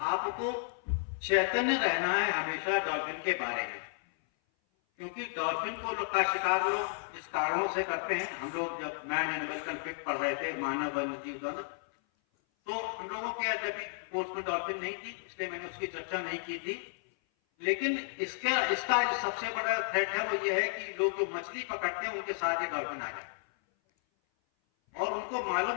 आपको चैतन्य रहना है हमेशा डॉल्फिन के बारे में, क्योंकि डॉल्फिन को का शिकार लोग इस कारणों से करते हैं। हम लोग जब मैन एनिमल कॉन्फ्लिक्ट पढ़ रहे थे, मानव वन्य जीव द्वंद्व, तो हम लोगों के जब कोर्स में डॉल्फिन नहीं थी, इसलिए मैंने उसकी चर्चा नहीं की थी। लेकिन इसका जो सबसे बड़ा थ्रेट है वो ये है कि लोग जो मछली पकड़ते हैं उनके साथ ये डॉल्फिन आ जाए और उनको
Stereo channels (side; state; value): right; silent; 56 dB below the other